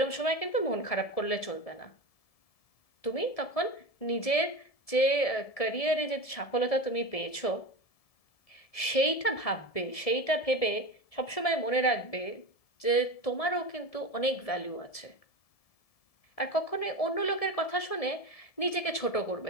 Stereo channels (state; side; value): late; right; 1.7 ms